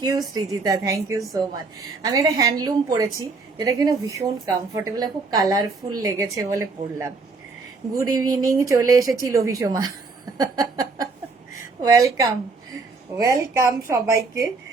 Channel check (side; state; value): left; quieter; 4.1 dB